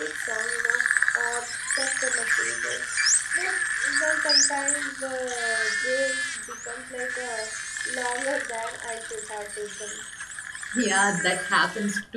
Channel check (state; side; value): identical; both; correlation 1.00